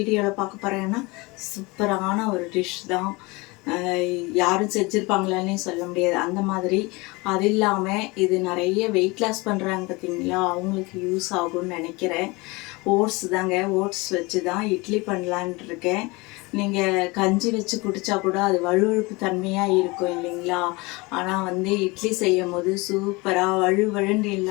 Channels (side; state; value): right; quieter; 24.8 dB